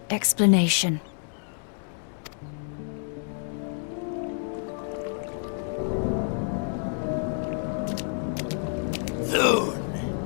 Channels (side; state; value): right; silent; 59 dB below the other